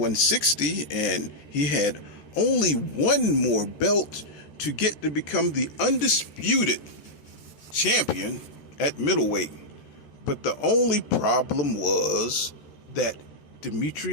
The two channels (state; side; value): late; right; 13 ms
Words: and he had only one more belt to get to become the undisputed champion at middleweight. But the only problem was that